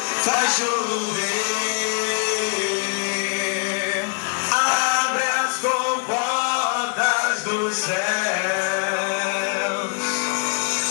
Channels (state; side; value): quieter; right; 38.7 dB